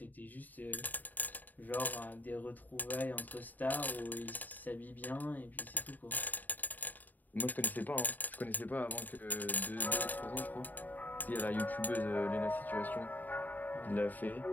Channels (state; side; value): late; right; 0.085 ms